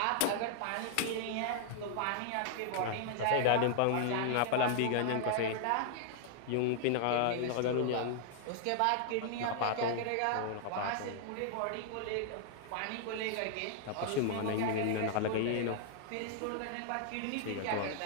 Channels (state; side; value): different; both; correlation -0.01